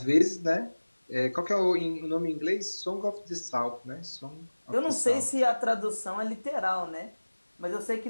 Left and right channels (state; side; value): inverted; both; correlation -1.00